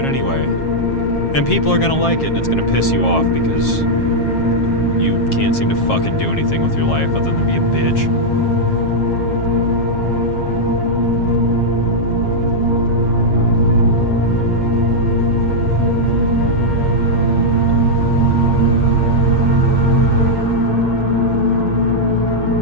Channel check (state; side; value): late; right; 7.4 ms